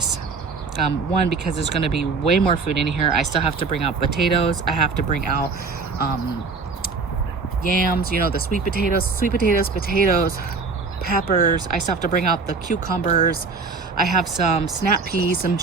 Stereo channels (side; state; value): left; quieter; 4.5 dB